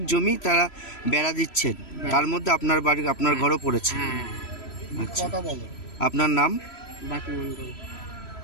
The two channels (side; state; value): right; late; 3.0 ms